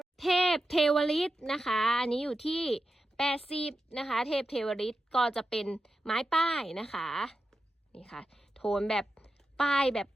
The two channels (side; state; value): both; normal; correlation 0.90